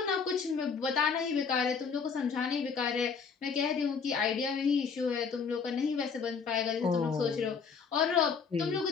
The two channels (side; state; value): right; quieter; 5.7 dB